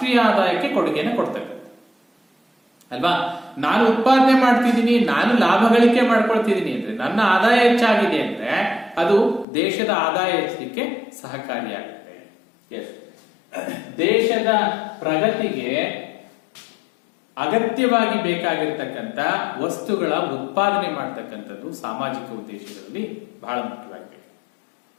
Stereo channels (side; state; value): right; drops out; at 9.5 s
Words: ಆದಾಯಕ್ಕೆ ಕೊಡುಗೆಯನ್ನು ಕೊಡ್ತಕ್ಕಂಥದ್ದು ಅಲ್ವಾ. ನಾನು ಉತ್ಪಾದನೆ ಮಾಡ್ತಿದ್ದೀನಿ, ನಾನು ಲಾಭ ಗಳಿಕೆ ಮಾಡ್ಕೊಳ್ತಿದ್ದೀನಿ ಅಂದ್ರೆ, ನನ್ನ ಆದಾಯ ಹೆಚ್ಚಾಗಿದೆ ಅಂದ್ರೆ ಅದು ದೇಶದ ಆದಾಯ ಹೆಚ್ಚಲಿಕ್ಕೆ ಸಹಕಾರಿಯಾಗುತ್ತೆ. ದೇಶದ ಪ್ರಗತಿಗೆ ಅಗತ್ಯವಾಗಿ ಬೇಕಾಗಿರ್ತಕ್ಕಂಥ ವಸ್ತುಗಳ ಉತ್ಪಾದನೆ ಮಾಡ್ತಕ್ಕಂಥದ್ದು ಸಾಮಾಜಿಕ ಉದ್ದೇಶಗಳಲ್ಲಿ ಬಹಳ ಮುಖ್ಯವಾಗಿದೆ.